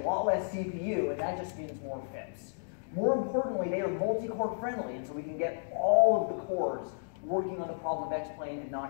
less CPU, and that just means more FIPS. More importantly, they are multi-core friendly, and so we can get all of the cores working on the problem of X-Plane and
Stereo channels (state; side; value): silent; right; digital silence